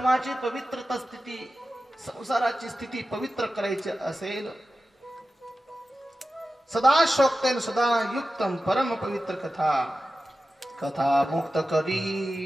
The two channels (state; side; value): normal; both; correlation 0.93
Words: पवित्रता स्थिती, संसाराची स्थिती पवित्र करायची असेल, सदा शोक्तेन सदा युक्तम परम पवित्र कथा. कथा मुक्त करी,